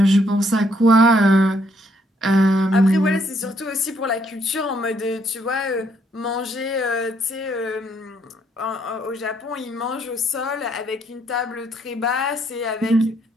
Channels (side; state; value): both; normal; correlation 0.70